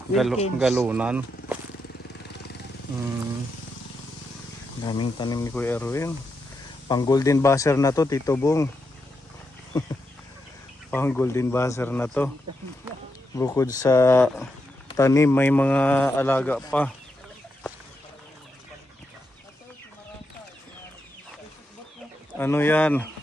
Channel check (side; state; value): both; normal; correlation 0.84